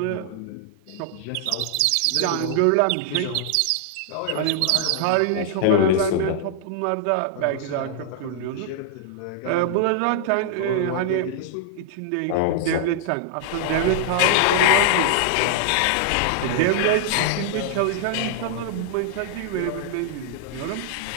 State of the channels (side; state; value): both; different; correlation -0.01